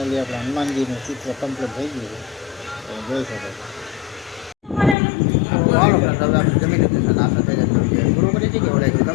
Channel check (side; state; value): right; drops out; at 5.0 s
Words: આપણે હનુમાનજીનું ચિત્ર કમ્પ્લીટ થઈ ગયું છે. જોઈ શકો હાલો ફ્રેન્ડ હવે આપણે જમી લીધું છે. નાસ્તા થઈ જાય પૂરું કરી છે કે ઓળાય